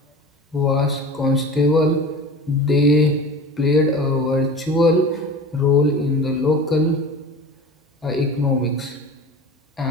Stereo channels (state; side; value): normal; both; correlation 0.36